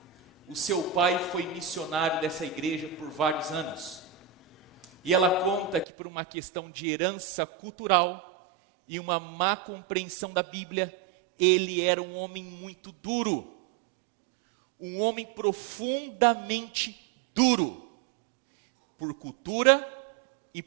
O seu pai foi missionário dessa igreja por vários anos. E ela conta que por uma questão de herança cultural e uma má compreensão da Bíblia, ele era um homem muito duro. Um homem profundamente duro. Por cultura e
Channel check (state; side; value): drops out; left; at 5.9 s